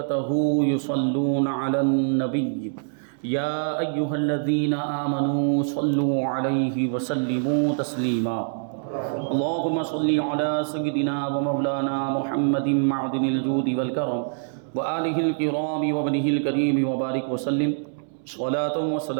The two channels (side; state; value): left; silent; 62 dB below the other